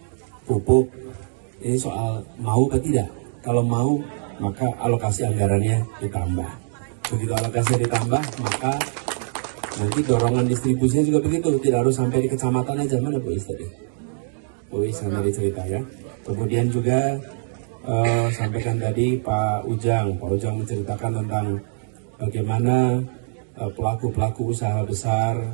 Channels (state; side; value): silent; left; digital silence